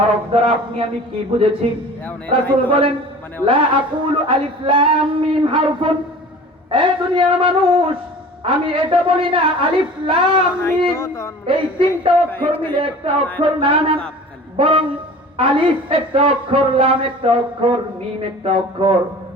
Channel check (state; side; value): normal; both; correlation 0.41